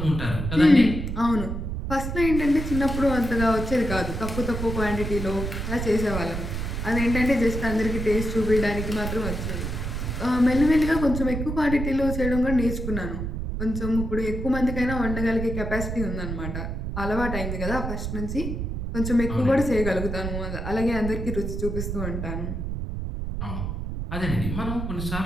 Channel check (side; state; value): right; noise; rumble, 4 dB below the sound